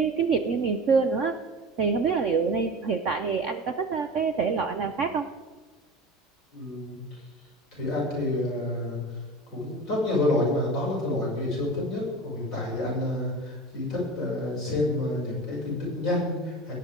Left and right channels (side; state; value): both; normal; correlation 0.33